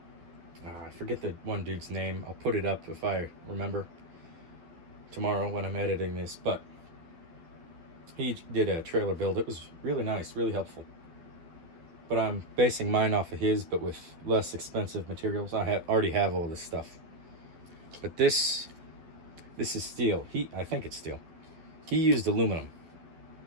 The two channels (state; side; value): late; left; 12 ms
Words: I forget the one dude's name. I'll put it up if I remember tomorrow when I'm editing this. But he did a trailer build. It was really nice, really helpful. But I'm basing mine off of his, but with less expensive materials. I already have all this stuff. But this is steel. I think it's steel. He used aluminum